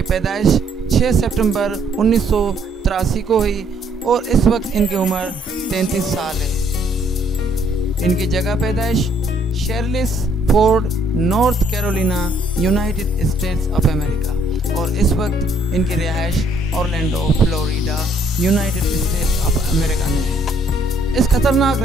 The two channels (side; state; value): both; normal; correlation 0.66